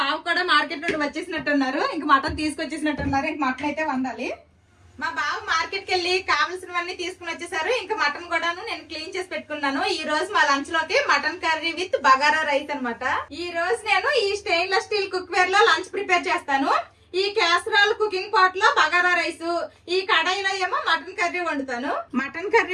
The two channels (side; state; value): both; identical; correlation 1.00